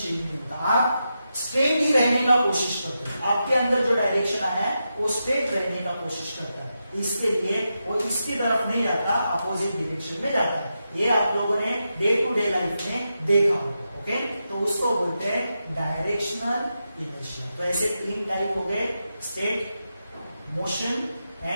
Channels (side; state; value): both; inverted; correlation -0.88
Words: नहीं होता, आप स्ट्रेट ही रहने का कोशिश करते हैं। आपके अंदर जो डायरेक्शन आया है वो स्ट्रेट रहने का कोशिश करता है, इसके लिए वो इसकी तरफ नहीं जाता, अपोजिट डायरेक्शन में जाता है। ये आप लोगों ने डे टू डे लाइफ में देखा होगा। ओके, तो उसको बोलते हैं डायरेक्शनल इनर्शिया। तो ऐसे तीन टाइप हो गए, state, motion